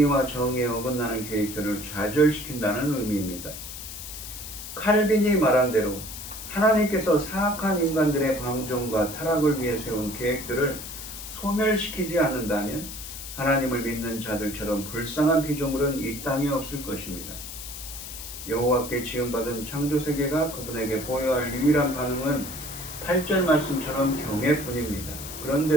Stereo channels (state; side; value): noise; left; hiss, 10 dB below the sound